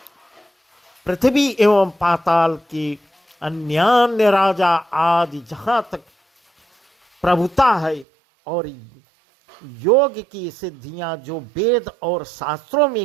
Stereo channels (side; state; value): left; drops out; at 8.1 s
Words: पृथ्वी एवं पाताल के अन्यान्य राजा आदि जहाँ तक प्रभुता है और योग की सिद्धियां जो वेद और शास्त्रों